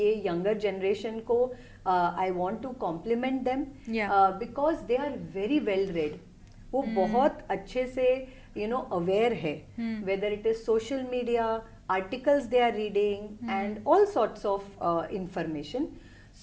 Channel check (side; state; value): both; identical; correlation 1.00